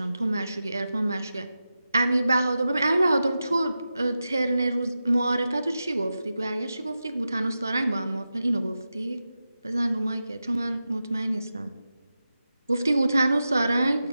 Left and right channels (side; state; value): both; inverted; correlation -0.92